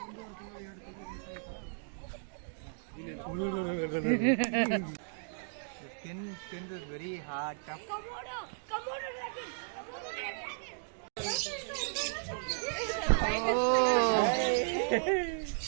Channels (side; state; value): left; silent; digital silence